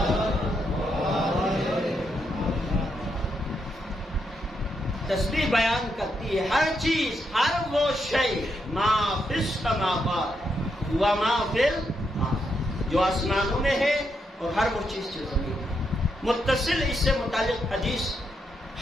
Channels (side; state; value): both; normal; correlation 0.81